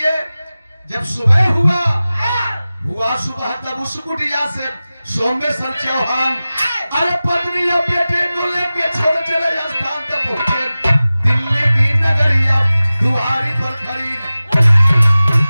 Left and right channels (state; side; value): inverted; both; correlation -0.97